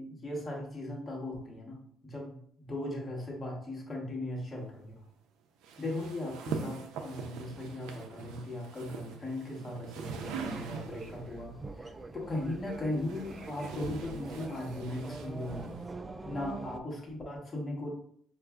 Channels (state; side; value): normal; both; correlation 0.71